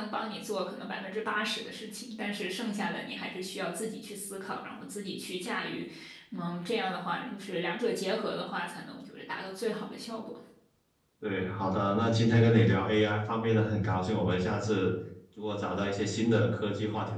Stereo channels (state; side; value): identical; both; correlation 1.00